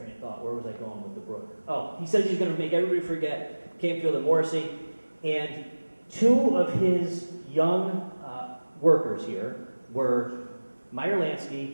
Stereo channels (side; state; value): both; inverted; correlation -1.00